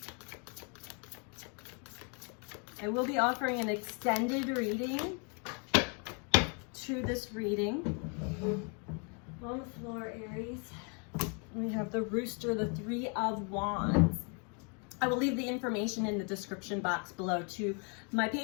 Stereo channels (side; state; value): right; quieter; 37.0 dB